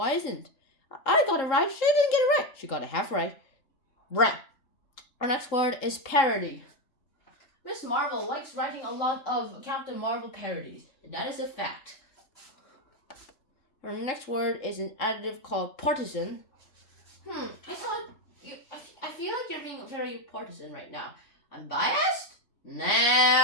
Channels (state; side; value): late; right; 3.7 ms